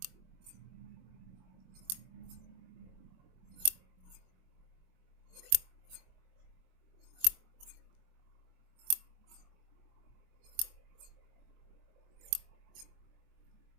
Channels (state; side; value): late; left; 22 ms